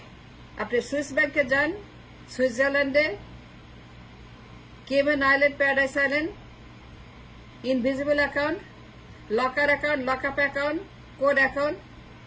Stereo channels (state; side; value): identical; both; correlation 1.00